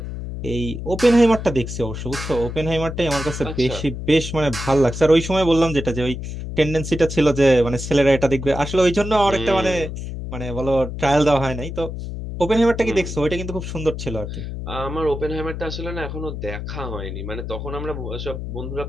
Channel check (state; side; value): noise; left; hum, 7 dB below the sound